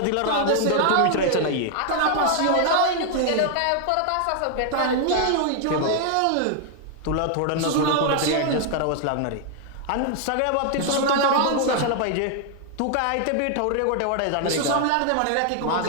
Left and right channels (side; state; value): both; different; correlation 0.00